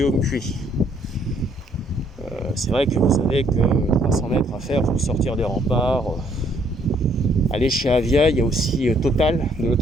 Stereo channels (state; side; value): normal; both; correlation 0.66